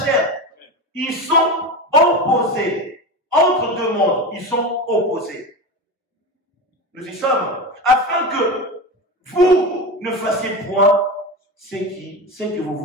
Ils sont opposés. Entre deux mondes, ils sont opposés. Nous y sommes. Afin que vous ne fassiez point ce que vous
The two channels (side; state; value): both; normal; correlation 0.23